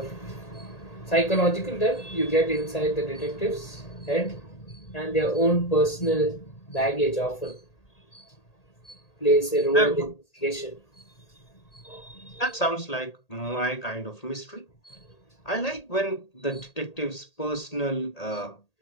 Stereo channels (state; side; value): late; right; 1.8 ms